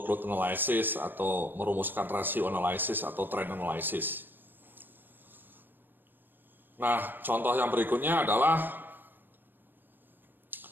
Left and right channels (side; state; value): left; late; 0.094 ms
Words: analysis atau merumuskan ratio analysis atau trend analysis. Nah, contoh yang berikutnya adalah